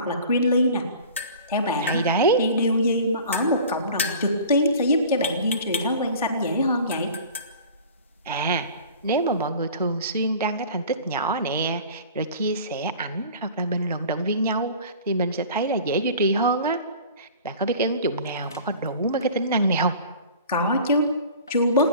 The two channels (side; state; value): both; inverted; correlation -0.42